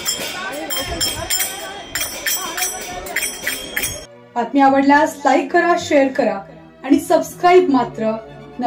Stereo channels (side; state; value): both; identical; correlation 1.00